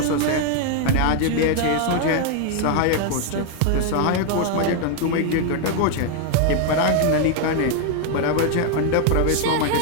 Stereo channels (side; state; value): both; different; correlation 0.00